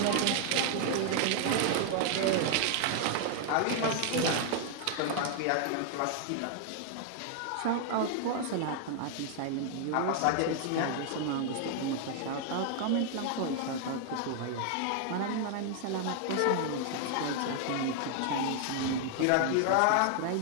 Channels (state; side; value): different; both; correlation 0.00